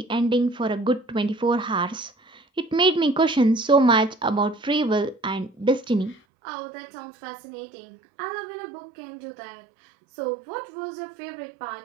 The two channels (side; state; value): left; drops out; at 6.2 s